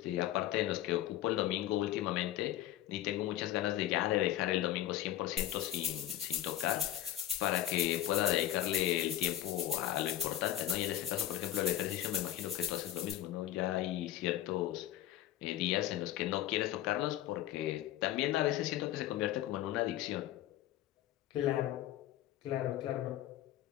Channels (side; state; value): right; quieter; 13.1 dB